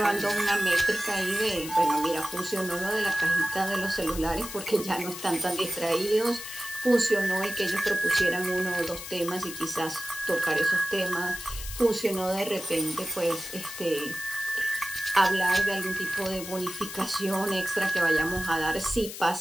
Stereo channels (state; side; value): noise; left; hiss, 10 dB below the sound